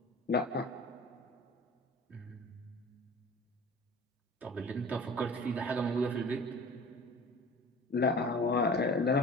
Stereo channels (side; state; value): both; normal; correlation 0.40